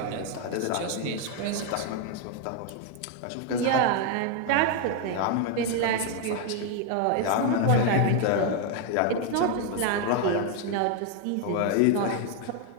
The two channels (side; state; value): both; different; correlation 0.01